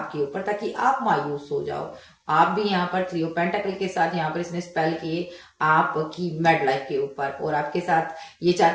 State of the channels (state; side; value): identical; both; correlation 1.00